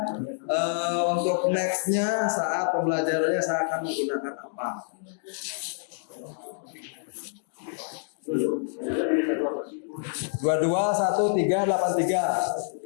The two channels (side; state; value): right; silent; digital silence